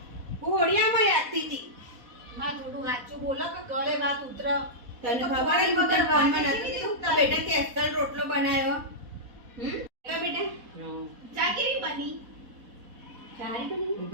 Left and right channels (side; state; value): left; late; 4.1 ms